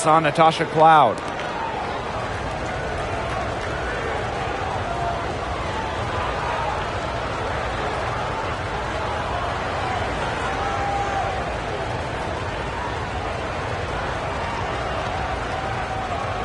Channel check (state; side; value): identical; both; correlation 1.00